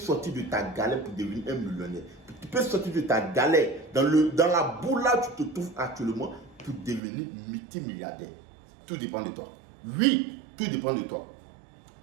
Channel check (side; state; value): left; drops out; at 7.0 s